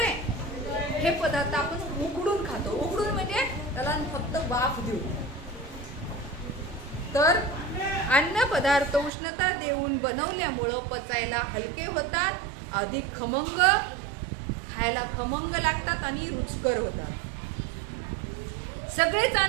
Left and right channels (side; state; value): left; drops out; at 9.1 s